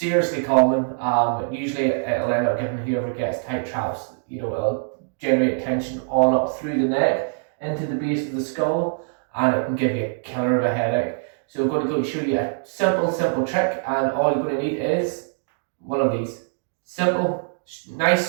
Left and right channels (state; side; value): silent; left; digital silence